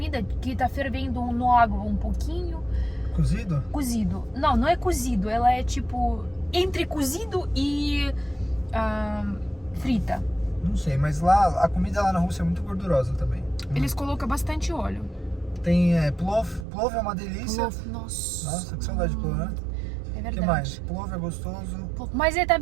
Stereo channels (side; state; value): left; drops out; at 16.7 s